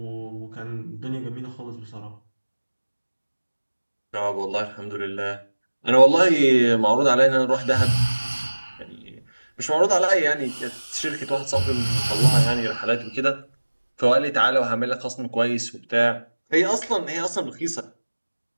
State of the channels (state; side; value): inverted; both; correlation -1.00